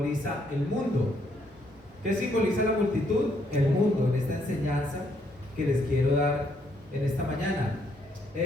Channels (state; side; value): normal; both; correlation 0.72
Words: el mundo. ¿Qué simboliza la multitud? El mundo, en esta enseñanza que les quiero dar en esta mañana.